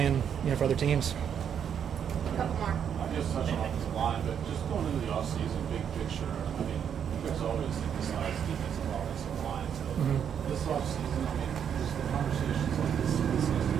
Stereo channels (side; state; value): left; quieter; 8.3 dB